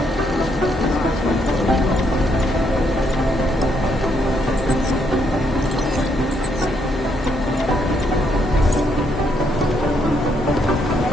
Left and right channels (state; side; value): normal; both; correlation 0.74